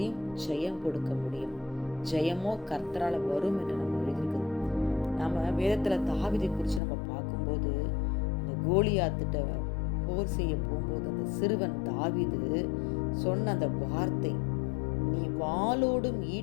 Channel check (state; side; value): drops out; right; at 6.8 s